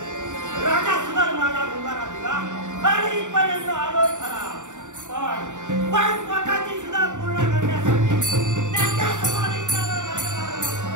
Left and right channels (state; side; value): late; left; 0.85 ms